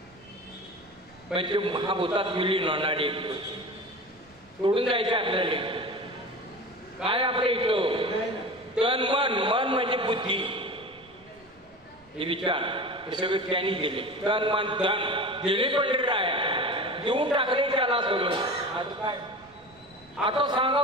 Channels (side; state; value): right; noise; rumble, 30 dB below the sound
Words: म्हणजे महाभूतात विलीन होणारे सोडून जायचे आपल्याला काय आपल्या इथं तन मन मन म्हणजे बुद्धी हे विचार हे सगळे त्यांनी दिले तन मन धन दिले पंढरीराया देऊन टाकले त्याला सगळं आता काय आता